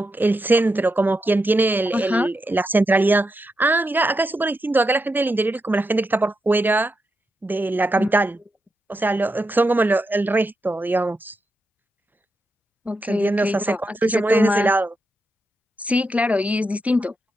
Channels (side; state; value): both; normal; correlation 0.85